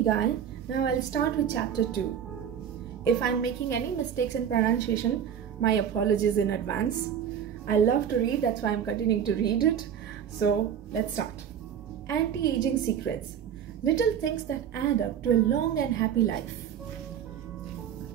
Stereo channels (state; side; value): quieter; left; 8.7 dB